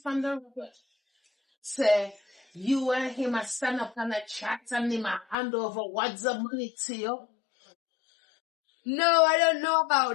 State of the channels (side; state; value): right; drops out; at 5.4 s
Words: from the road. Say, you and him a stand up and a chat and him a hand over what's the money to you. No, I don't know